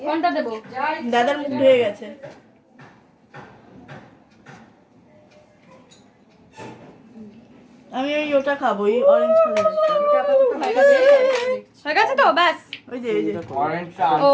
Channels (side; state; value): both; identical; correlation 1.00